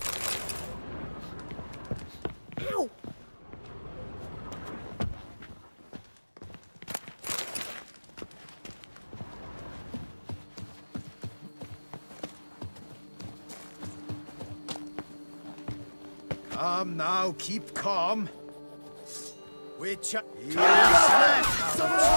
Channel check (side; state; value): both; inverted; correlation -1.00